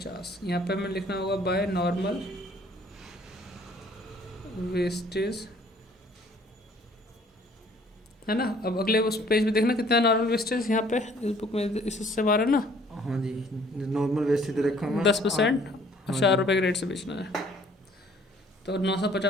यहाँ पे हमें लिखना होगा बाय नॉर्मल वेस्टेज, है ना। अब अगले उस पेज पे देखना कितना नॉर्मल वेस्टेज यहाँ पे इस बुक में, इस हिस्से बारह ना। हाँ जी, नॉर्मल वेस्ट दे रखा है 10% और हाँ 4 जी। रुपये के रेट से बेचना है। तो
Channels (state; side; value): normal; both; correlation 0.58